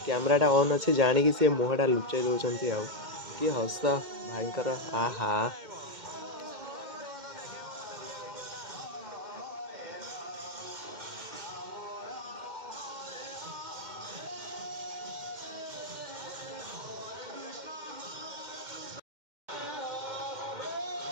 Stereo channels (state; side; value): late; left; 2.1 ms